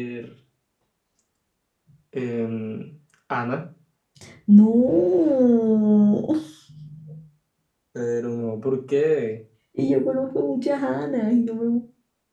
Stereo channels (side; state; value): both; identical; correlation 1.00